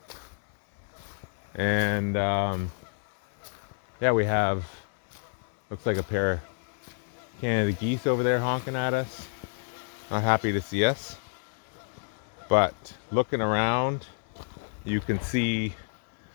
And yeah, we have, looks like a pair of Canada geese over there honking at us. Not happy to see us. But looking around, you can see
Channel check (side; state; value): right; silent; digital silence